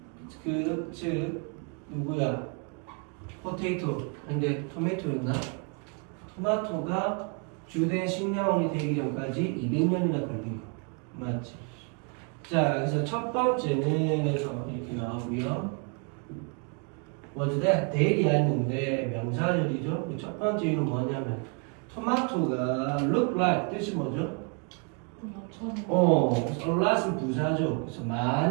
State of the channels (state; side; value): quieter; left; 36.2 dB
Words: 즉 누구야? 포테이토. 근데 토마토였나? 토마토가 주된 식량원이 되기 전까지 200년이나 걸린 거. 맞지? 자, 그래서 첫 번째는 해서 이렇게 나오고요. 먼저 데일리아 했는데 명사절이죠. 첫 번째 이유는 뭐냐면 토마토가 look like 뜻이 뭐죠? a lot은 부사죠. 그래서